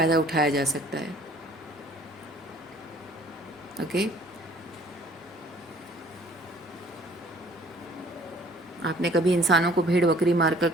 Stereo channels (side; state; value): both; normal; correlation 0.55